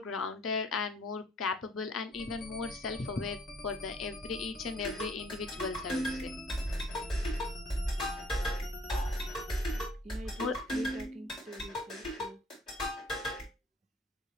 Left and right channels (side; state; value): both; normal; correlation 0.59